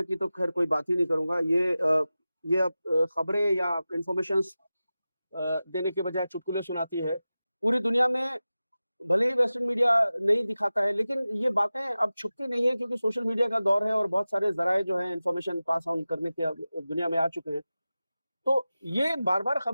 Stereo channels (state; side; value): inverted; both; correlation -0.95